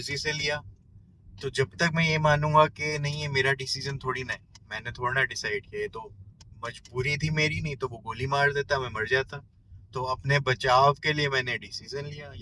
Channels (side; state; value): both; identical; correlation 1.00